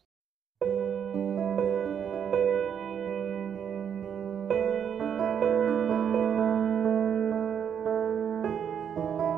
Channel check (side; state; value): left; quieter; 8.2 dB